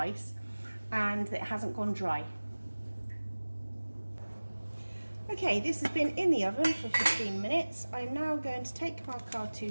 and it hasn't gone dry. Okay, this has been in the oven for 15 minutes. I'm now going to take my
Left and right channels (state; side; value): inverted; both; correlation -1.00